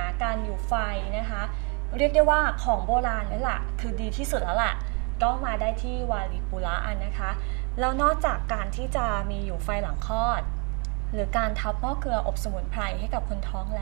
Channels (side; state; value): left; quieter; 33.7 dB